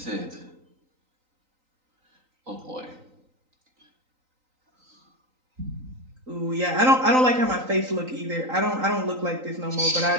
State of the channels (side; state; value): left; late; 3.9 ms